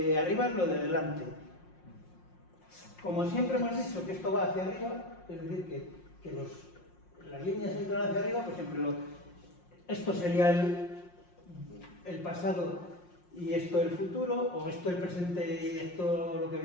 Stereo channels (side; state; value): right; late; 5.6 ms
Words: arriba es lo de delante. Como siempre hemos dicho que esto va hacia arriba, es decir, que las líneas entran hacia arriba, pues siempre esto sería el pasado y esto el futuro, o esto el presente y esto lo que